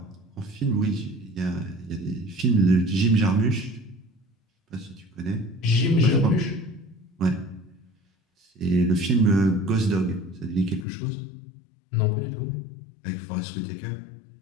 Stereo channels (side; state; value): right; drops out; at 10.9 s